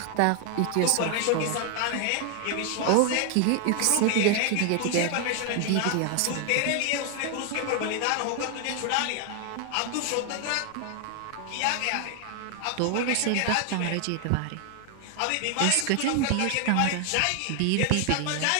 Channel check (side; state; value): both; different; correlation 0.00